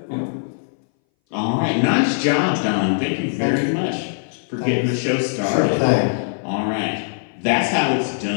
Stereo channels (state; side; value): silent; right; 61 dB below the other